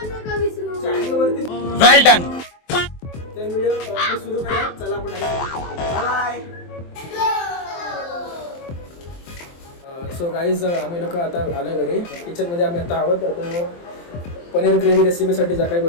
पण नका विसरू. चॅनलवरती वेल डन. तर व्हिडिओ सुरू करूया. चला आपण बाय. सो गाईज, आम्ही लोक आता आलो घरी. किचनमध्ये आम्ही आता आहोत. आता पनीर ग्रेव्ही रेसिपीसाठी ज्या काही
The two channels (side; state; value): right; late; 23 ms